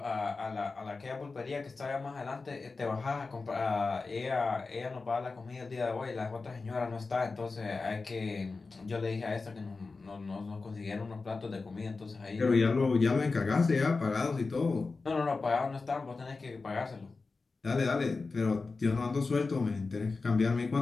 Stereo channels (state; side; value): quieter; right; 4.0 dB